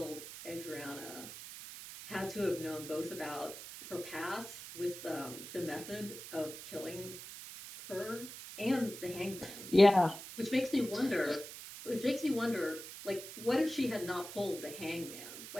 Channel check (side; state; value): right; noise; hiss, 11 dB below the sound